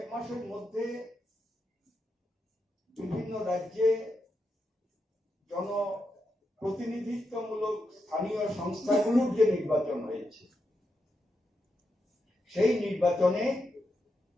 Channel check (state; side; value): normal; both; correlation 0.85